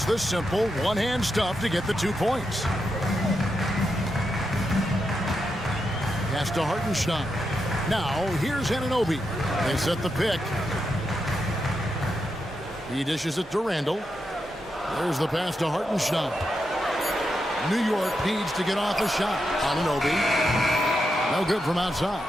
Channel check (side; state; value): both; normal; correlation 0.85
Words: the simple one-hand stuff to get the 2 points. Pass to Hartenstein. Now, here's Anunoby. They set the pick. He dishes it to Randall. There's the pass to Hartenstein. New York needs to get off a shot. Anunoby. No good from outside.